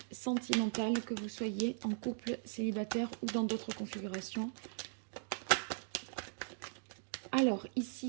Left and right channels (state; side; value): silent; left; digital silence